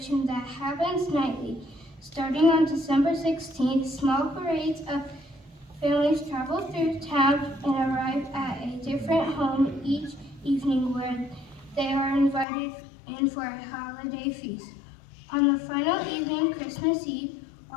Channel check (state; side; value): drops out; right; at 12.5 s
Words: that happens nightly. Starting on December 16th, small parades of families travel through town and arrive at a different home each evening where they are invited in for a holiday feast. On the final evening, Christmas Eve,